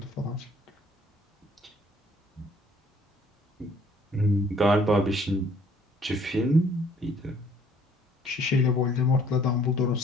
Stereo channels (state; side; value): normal; both; correlation 0.60